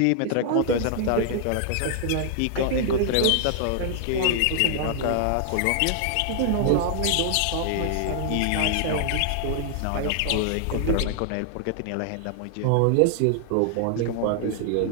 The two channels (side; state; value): both; different; correlation 0.00